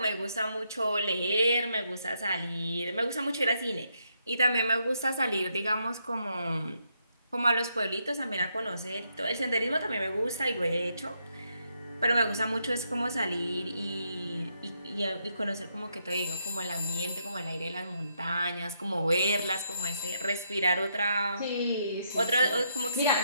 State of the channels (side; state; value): both; inverted; correlation -0.77